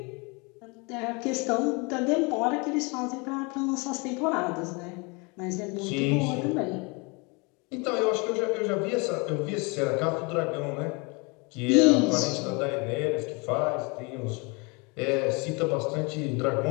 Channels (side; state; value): right; quieter; 29.6 dB